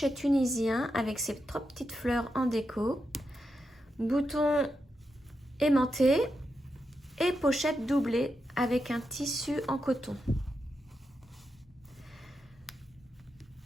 tunisien avec ses 3 petites fleurs en déco, boutons aimantés et pochette doublée avec un tissu en coton.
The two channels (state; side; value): normal; both; correlation 0.86